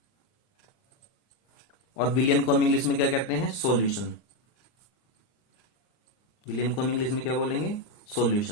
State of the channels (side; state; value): right; late; 39 ms